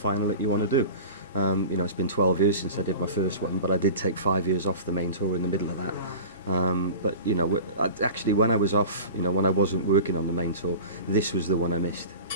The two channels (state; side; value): inverted; both; correlation -0.35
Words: that you want to do. It's been 12 years since I did my first one, but I did take 5 years off the main tour in the middle of that. But actually, when I was off, when I wasn't working on the main tour, this was the one I missed.